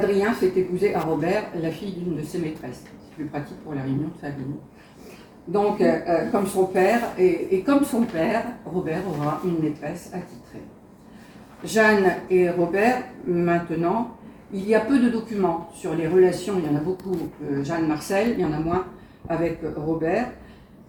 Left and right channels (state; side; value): identical; both; correlation 1.00